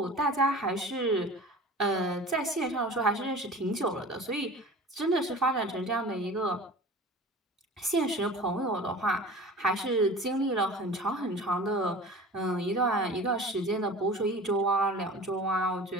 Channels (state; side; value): normal; both; correlation 0.39